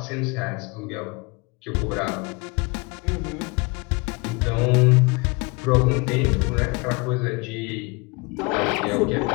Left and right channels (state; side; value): quieter; right; 28.0 dB